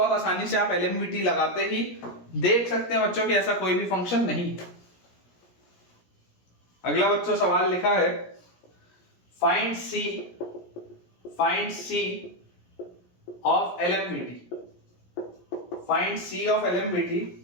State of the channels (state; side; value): late; right; 17 ms